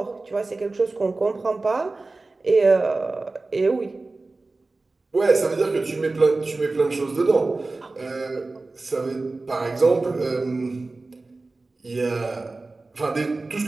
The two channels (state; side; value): quieter; left; 3.4 dB